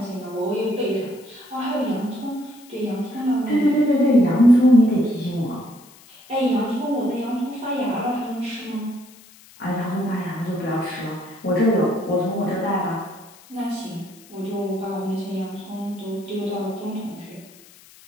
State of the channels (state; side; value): noise; left; hiss, 24 dB below the sound